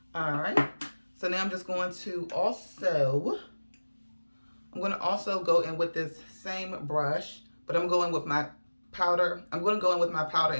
All right. So now I'm just going to also, I'm going to also go in with this same brush, but I'm going with my powder. I'm going to go in with my powder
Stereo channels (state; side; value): inverted; both; correlation -1.00